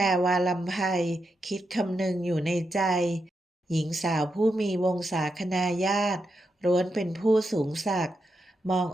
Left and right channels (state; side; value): normal; both; correlation 0.85